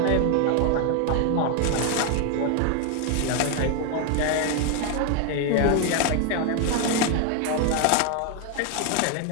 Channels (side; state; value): both; different; correlation 0.01